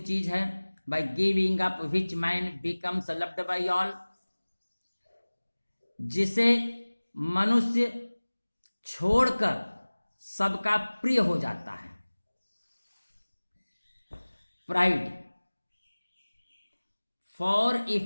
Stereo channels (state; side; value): inverted; both; correlation -1.00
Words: है। By giving up which man becomes loved by all, जिसे मनुष्य छोड़कर सबका प्रिय हो जाता है। Pride, for if